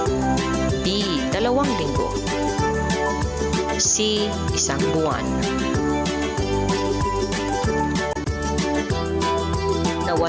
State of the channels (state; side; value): identical; both; correlation 1.00